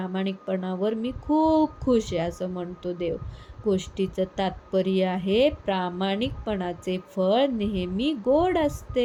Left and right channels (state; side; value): identical; both; correlation 1.00